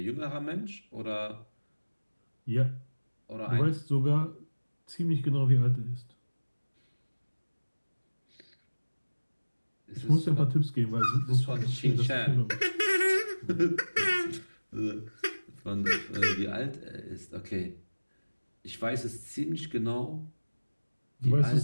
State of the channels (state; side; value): inverted; both; correlation -1.00